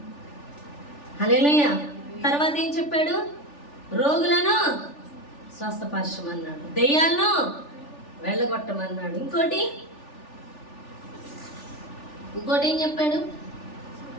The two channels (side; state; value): right; late; 3.4 ms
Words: హల్లెలూయా. తర్వాత ఏం చెప్పాడు? రోగులను స్వస్థపరచమన్నాడు, దెయ్యాలను వెళ్ళగొట్టమన్నాడు. ఇంకోటి ఏం చెప్పాడు?